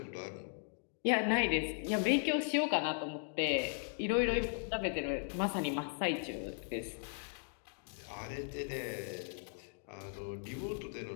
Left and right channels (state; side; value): silent; right; 53 dB below the other